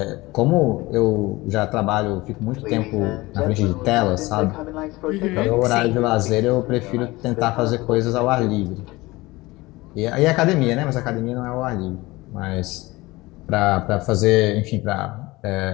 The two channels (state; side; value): quieter; right; 20.9 dB